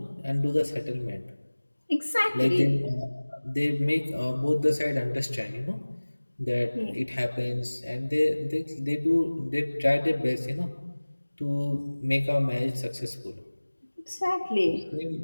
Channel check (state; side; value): inverted; both; correlation -1.00